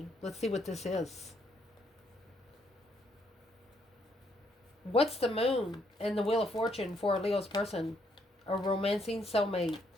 Let's see what this is. What's the moon and the Wheel of Fortune for a Leo's person? A romancing soulmate.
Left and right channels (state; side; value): normal; both; correlation 0.72